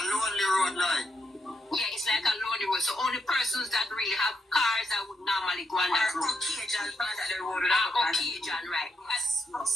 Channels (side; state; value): both; normal; correlation 0.81